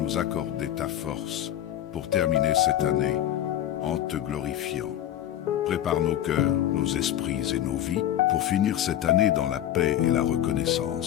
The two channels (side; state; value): right; quieter; 11.7 dB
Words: accorder ta force pour terminer cette année en te glorifiant. Prépare nos cœurs, nos esprits et nos vies pour finir cette année dans la paix et la